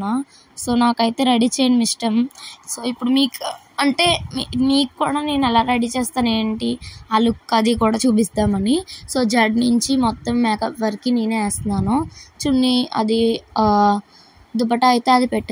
సో నాకైతే రెడీ చేయడం ఇష్టం. సో ఇప్పుడు మీకు కూడా నేను ఎలా రెడీ చేస్తాను ఏంటి ఆ లుక్ అది కూడా చూపిస్తామని. సో జడ్ నుంచి మొత్తం మేకప్ వరకు నేనే వేస్తున్నాను. చున్నీ అది దుపట్టా అయితే అది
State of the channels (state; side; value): identical; both; correlation 1.00